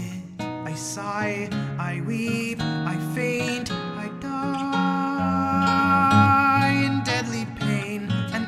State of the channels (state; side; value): identical; both; correlation 1.00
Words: I sigh, I weep, I faint, I die in deadly pain and